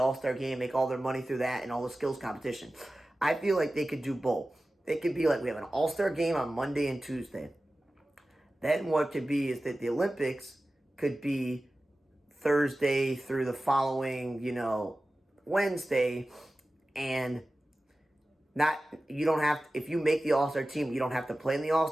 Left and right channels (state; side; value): normal; both; correlation 0.96